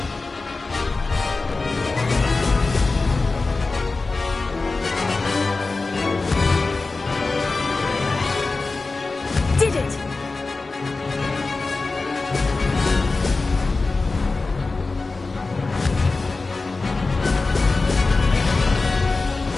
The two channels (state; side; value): quieter; right; 3.7 dB